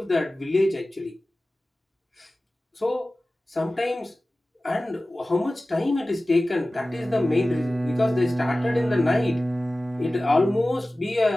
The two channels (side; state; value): both; normal; correlation 0.97